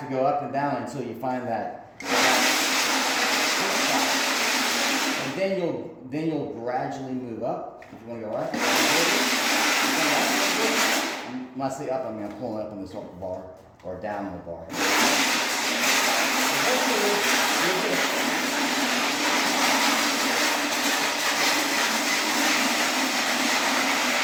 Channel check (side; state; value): both; identical; correlation 1.00